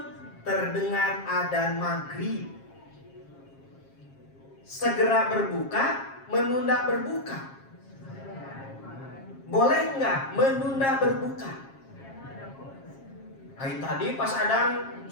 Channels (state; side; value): late; right; 7.4 ms